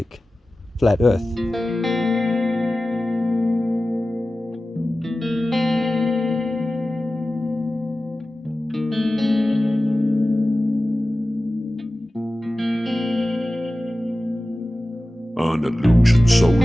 flat Earth? An illusion so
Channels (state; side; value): normal; both; correlation 0.96